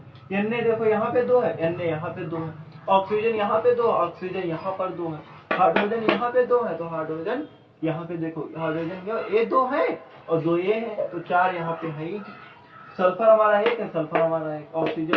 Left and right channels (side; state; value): both; identical; correlation 1.00